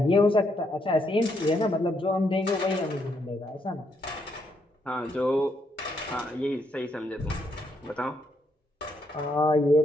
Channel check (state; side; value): normal; both; correlation 0.76